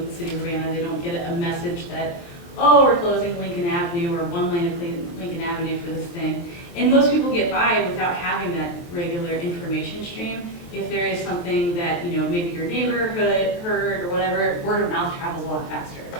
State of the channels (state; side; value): late; right; 23 ms